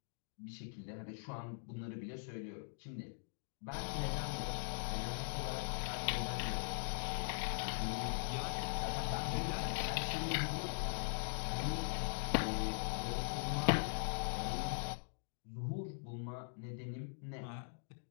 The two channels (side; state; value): right; silent; digital silence